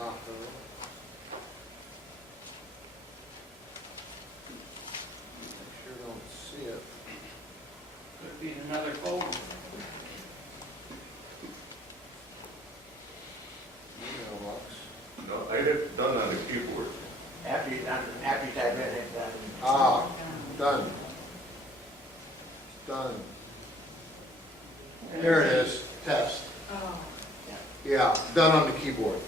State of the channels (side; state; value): both; normal; correlation 0.59